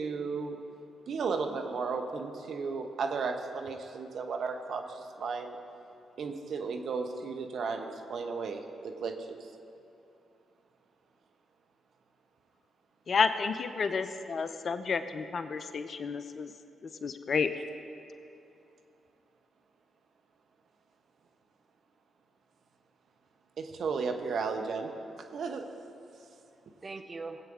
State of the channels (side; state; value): both; normal; correlation 0.77